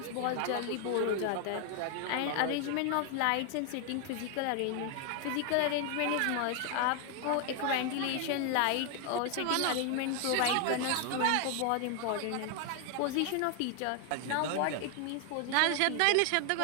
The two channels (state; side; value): different; both; correlation 0.00